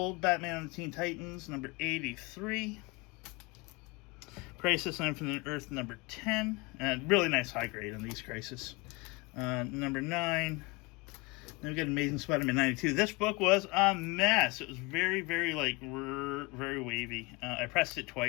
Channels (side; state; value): right; quieter; 26.1 dB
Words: Batman and the Teen Titans number 83. Crisis on Infinite Earth number 10. And really nice high grade on these Crisis. Number 9. Then we got Amazing Spider-Man 92. This book was a mess. It was very, very, like, very wavy. I pressed it